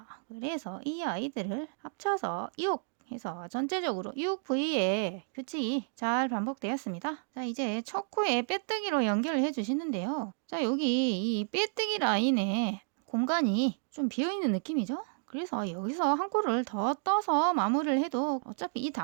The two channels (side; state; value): left; silent; digital silence